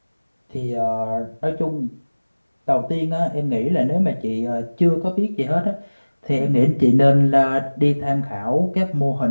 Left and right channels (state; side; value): inverted; both; correlation -1.00